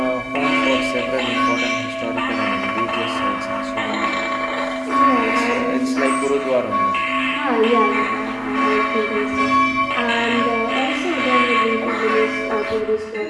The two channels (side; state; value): both; identical; correlation 1.00